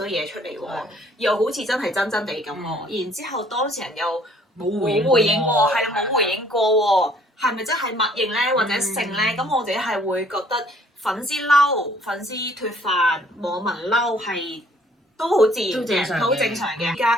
嘢出嚟喎，又好似真係真真地咁喎，然之後當事人又冇回應喎，係啦冇回應過喎，係咪真係默認咧或者性咧？咁我自己係會覺得粉絲嬲、粉絲脫飯、網民嬲係都好自然嘅，好正常嘅。而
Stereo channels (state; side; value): normal; both; correlation 0.60